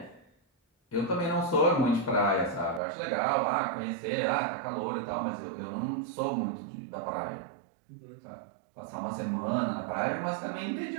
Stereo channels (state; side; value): drops out; left; at 2.8 s